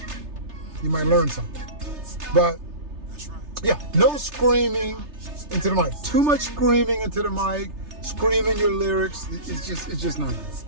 You might learn something. But yeah, no screaming into the mic. Too much screaming into the mic, screaming your lyrics. It's just not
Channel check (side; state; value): left; late; 3.3 ms